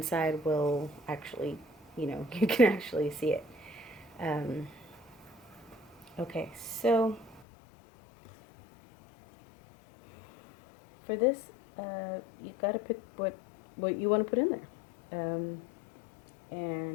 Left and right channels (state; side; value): drops out; right; at 7.5 s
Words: will actually, you know, you can actually see it. Okay, so for this, you gotta pick what you want to put in there.